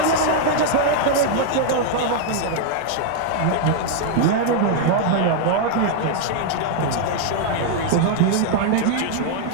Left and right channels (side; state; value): both; different; correlation 0.00